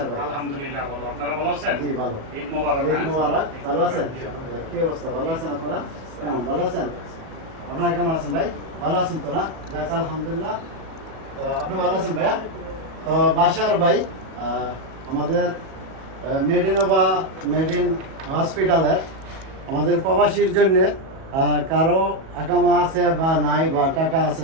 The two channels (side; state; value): left; late; 37 ms